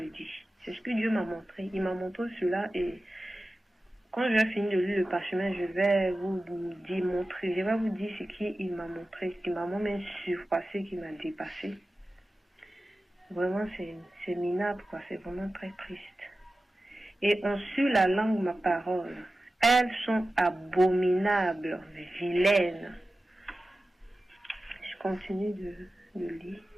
dis. C'est ce que Dieu m'a montré. Il m'a montré cela et quand je vais finir de lire le parchemin, je vais vous démontrer, je vais vous dire ce qu'il m'a montré, ce qui m'a même surpassé, qui m'a dépassé. Vraiment, c'est minable, quoi. C'est vraiment très triste. Et ont su la langue ma parole. Elles sont abominables, vilaines. Je continue de lire.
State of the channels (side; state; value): both; normal; correlation 0.95